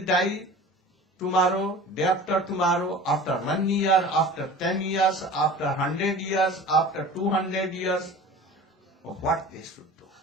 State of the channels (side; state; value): both; normal; correlation 0.40